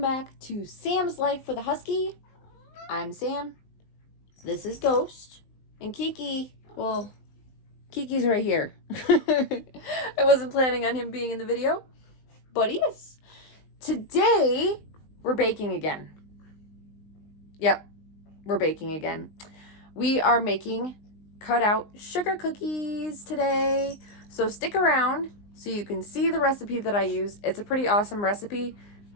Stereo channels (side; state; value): right; late; 19 ms